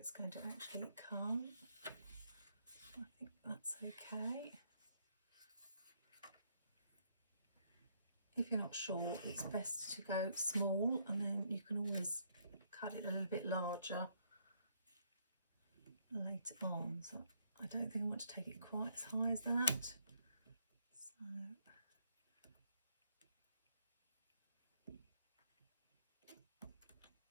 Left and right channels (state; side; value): inverted; both; correlation -0.72